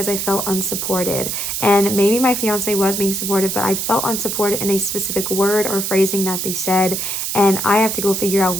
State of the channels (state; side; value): noise; right; hiss, 2 dB below the sound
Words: I felt unsupported. And maybe my fiance was being supportive, but I felt unsupported in a specific word or phrasing that they said, and I have to go figure out